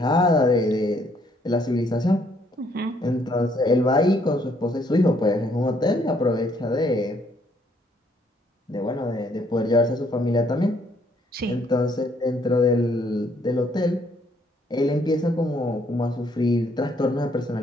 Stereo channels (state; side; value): normal; both; correlation 0.67